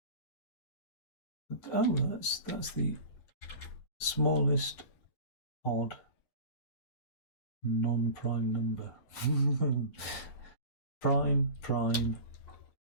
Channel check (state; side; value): late; right; 9.9 ms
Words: Oh, that's the smallest odd non-prime number. Prime,